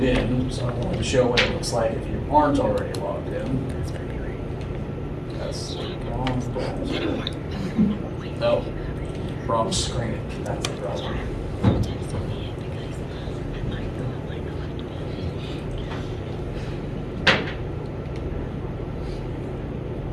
in, so I wanted to show what it looks like if you aren't already logged in. That's the wrong browser. No, wrong screen. That's the browser.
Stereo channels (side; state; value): both; identical; correlation 1.00